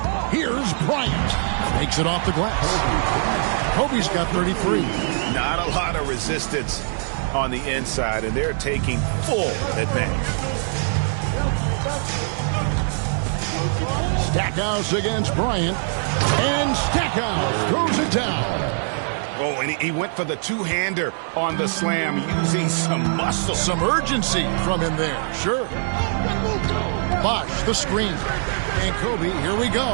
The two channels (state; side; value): silent; left; 58 dB below the other